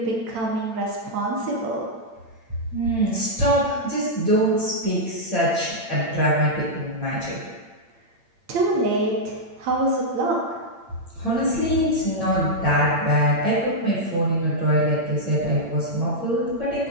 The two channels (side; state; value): left; late; 8.8 ms